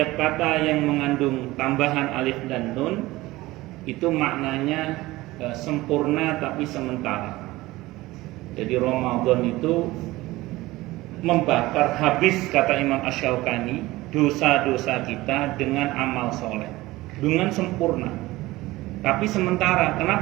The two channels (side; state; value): left; quieter; 18.8 dB